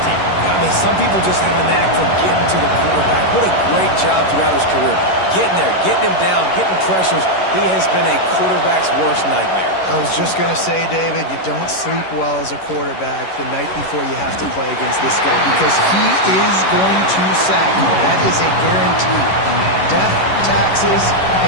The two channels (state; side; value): late; right; 11 ms